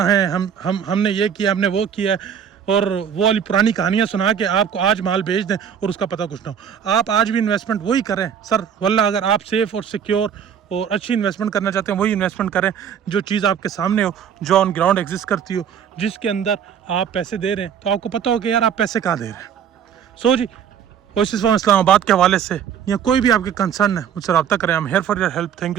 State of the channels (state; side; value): quieter; left; 8.2 dB